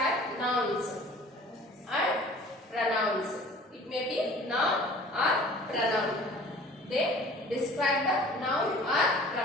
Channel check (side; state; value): both; normal; correlation 0.47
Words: nouns and pronouns. It may be noun or pronoun. They describe the noun or